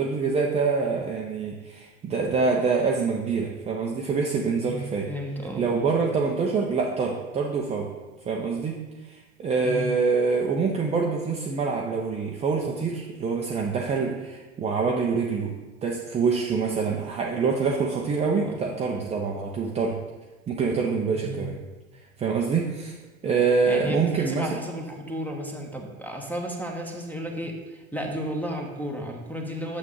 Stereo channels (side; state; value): left; quieter; 4.3 dB